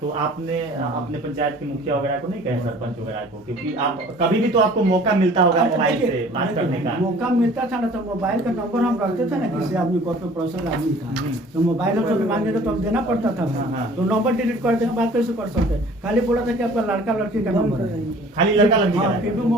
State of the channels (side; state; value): both; normal; correlation 0.49